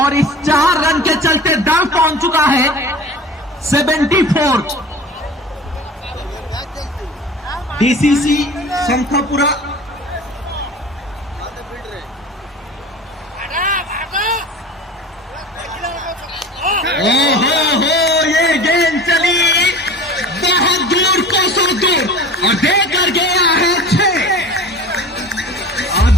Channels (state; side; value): normal; both; correlation 0.38